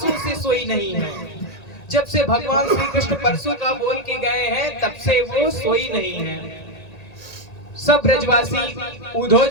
से सोई नहीं है। जब से भगवान श्री कृष्ण परसों का बोल के गए हैं, तब से वो सोई नहीं है। सब ब्रजवासी उद्धव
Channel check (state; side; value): late; right; 1.8 ms